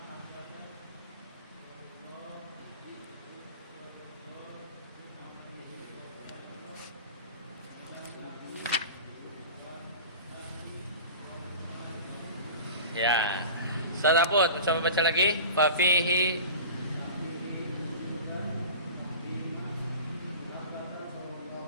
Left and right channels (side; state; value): both; inverted; correlation -0.35